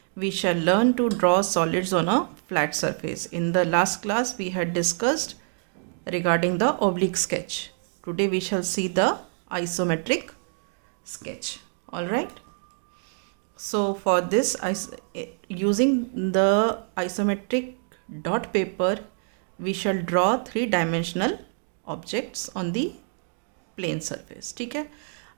we shall learn to draw solids on a flat surface. In the last class, we had discussed regarding the oblique sketch. Today, we shall see the isometric sketch. All right. So, for this, using the isometric dot paper, we shall draw three-dimensional objects on the plane surface. ठीक है,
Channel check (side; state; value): left; silent; 61 dB below the other